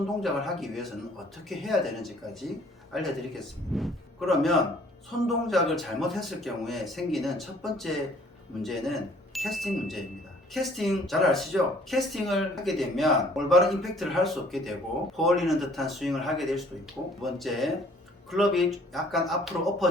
동작을 하기 위해서는 어떻게 해야 되는지까지 알려드리겠습니다. 그러면 손 동작을 잘못했을 경우에 생기는 첫 번째 문제는 캐스팅 문제입니다. 캐스팅 잘 아시죠? 캐스팅을 하게 되면 올바른 임팩트를 할 수 없게 되고 퍼올리는 듯한 스윙을 하게 될 수도 있고, 두 번째, 클럽이 약간 앞으로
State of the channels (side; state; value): both; normal; correlation 0.57